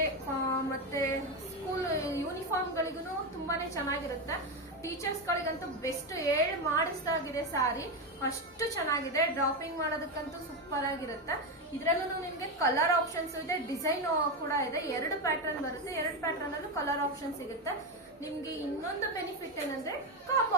ಮತ್ತೆ ಸ್ಕೂಲ್ ಯೂನಿಫಾರ್ಮ್ ಗಳಿಗೂ ತುಂಬಾನೇ ಚೆನ್ನಾಗಿರುತ್ತೆ. ಟೀಚರ್ಸ್ ಗಳಿಗಂತೂ ಬೆಸ್ಟ್ ಮಾಡಿಸ್ದಾಗಿದೆ ಸ್ಯಾರಿ, ಅಷ್ಟು ಚೆನ್ನಾಗಿದೆ. ಡ್ರಾಪಿಂಗ್ ಮಾಡೋದಕ್ಕಂತೂ ಸೂಪರ್ ಆಗಿರುತ್ತೆ. ಇದ್ರಲ್ಲೂ ನಿಮ್ಗೆ ಕಲರ್ ಆಪ್ಷನ್ಸ್ ಇದೆ, ಡಿಸೈನ್ ಕೂಡ ಇದೆ. 2 ಪ್ಯಾಟರ್ನ್ ಬರುತ್ತೆ, 2 ಪ್ಯಾಟರ್ನ್ ಅಲ್ಲೂ ಕಲರ್ ಆಪ್ಷನ್ ಸಿಗುತ್ತೆ. ನಿಮ್ಗೆ ಇನ್ನೊಂದು ಬೆನಿಫಿಟ್ ಏನಂದ್ರೆ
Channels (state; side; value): normal; both; correlation 0.12